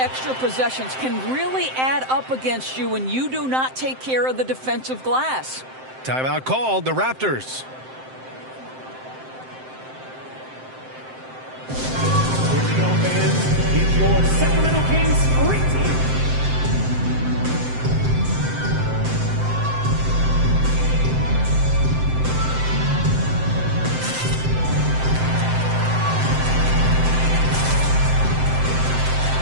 possessions can really add up against you when you do not take care of the defensive glass. Timeout called, the Raptors. Here we go, fans. It's your Sacramento Kings great team.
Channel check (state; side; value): late; left; 7.7 ms